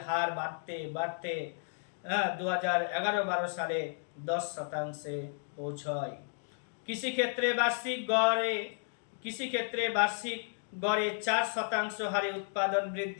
হার বাড়তে 2011-12 সালে 10% পৌঁছয়। কৃষিক্ষেত্রে বার্ষিক গড়ে 4% হারে উৎপাদন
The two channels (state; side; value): silent; right; digital silence